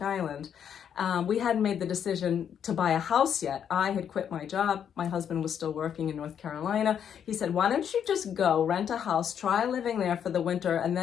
Island. We hadn't made the decision to buy a house yet. I had quit my job. My husband was still working in North Carolina. He said, why don't you just go rent a house, try living there for the winter, and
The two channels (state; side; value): quieter; right; 8.5 dB